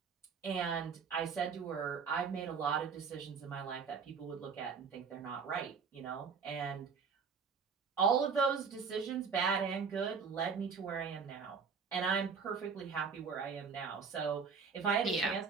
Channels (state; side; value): quieter; left; 5.7 dB